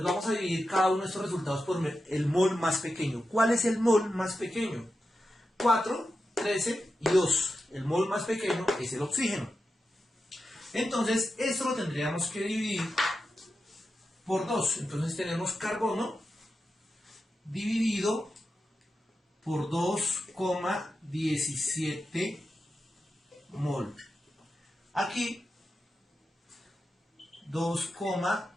vamos a dividir cada uno de estos resultados por el mol más pequeño. ¿Cuál es el mol más pequeño? 4, 13 y 2. El mol más pequeño es el oxígeno. Entonces esto lo tendríamos que dividir por 2. Entonces tenemos carbono dividido por 2,17 mol. Aquí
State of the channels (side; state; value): both; normal; correlation 0.90